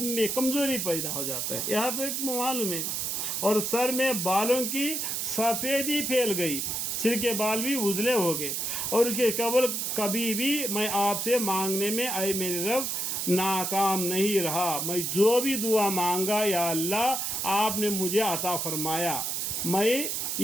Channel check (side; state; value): right; noise; hiss, 1 dB below the sound